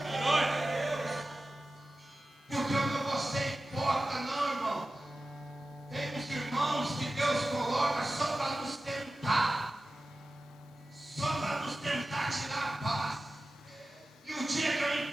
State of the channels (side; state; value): both; normal; correlation 0.95